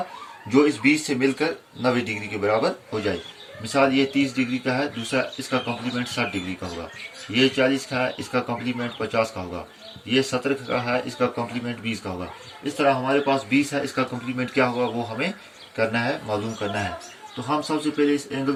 जो इस 20 से मिलकर 90 डिग्री के बराबर हो जाए। मिसाल ये 30 डिग्री का है, दूसरा इसका कम्प्लीमेंट 60 डिग्री का होगा। ये 40 का है, इसका कम्प्लीमेंट 50 का होगा। ये 70 का है, इसका कम्प्लीमेंट 20 का होगा। इस तरह हमारे पास 20 है, इसका कम्प्लीमेंट क्या होगा वो हमें करना है, मालूम करना है। तो हम सबसे पहले इस एंगल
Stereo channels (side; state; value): both; identical; correlation 1.00